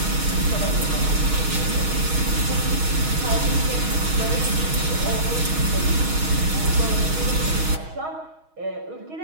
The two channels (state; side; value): late; left; 6.3 ms